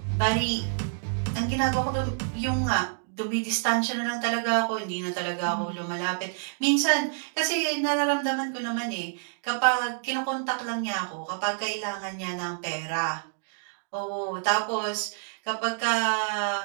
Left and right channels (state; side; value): silent; left; digital silence